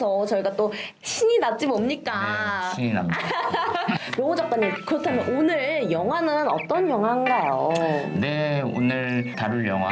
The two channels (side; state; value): both; identical; correlation 1.00